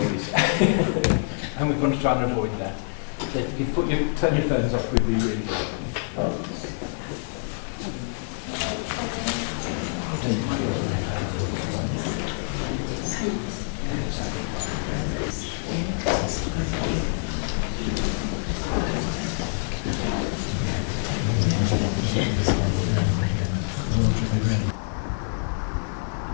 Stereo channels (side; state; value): right; silent; 61 dB below the other